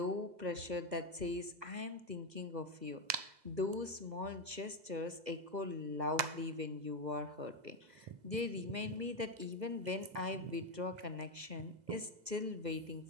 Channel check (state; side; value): late; left; 2.0 ms